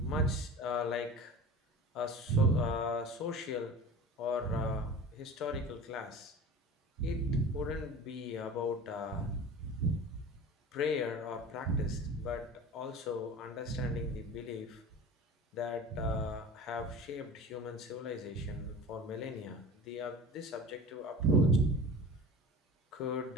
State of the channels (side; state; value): both; normal; correlation 0.36